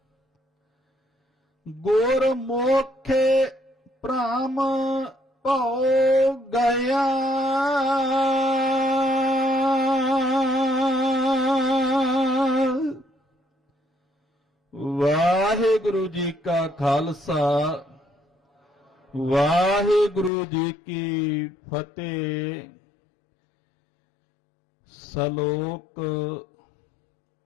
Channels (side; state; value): right; drops out; at 20.3 s